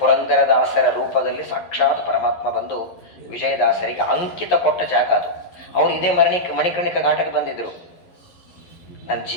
ರೂಪದಲ್ಲಿ ಸಾಕ್ಷಾತ್ ಪರಮಾತ್ಮ ಬಂದು ವಿಜಯದಾಸರಿಗೆ ಅಂಕಿತ ಕೊಟ್ಟ ಜಾಗ ಅದು. ಅವರು ಇದೇ ಮಣಿಕರ್ಣಿಕ ಘಾಟಕ್ಕೆ ಬಂದಿದ್ರು. ನನ್ನ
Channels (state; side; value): late; right; 11 ms